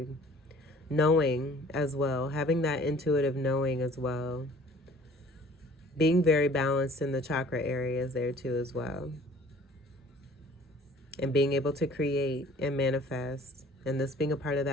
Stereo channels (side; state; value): both; normal; correlation 0.52